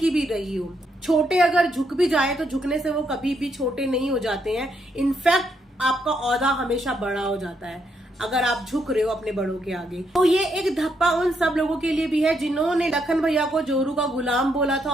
भी रही हो। छोटे अगर झुक भी जाए तो झुकने से वो कभी भी छोटे नहीं हो जाते हैं। इनफैक्ट आपका औहदा हमेशा बड़ा हो जाता है अगर आप झुक रहे हो अपने बड़ों के आगे। तो ये एक धप्पा उन सब लोगों के लिए भी है जिन्होंने लखन भैया को जोरू का गुलाम बोला था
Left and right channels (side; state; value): both; normal; correlation 0.77